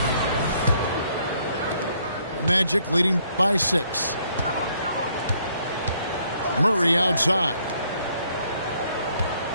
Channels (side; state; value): both; inverted; correlation -0.68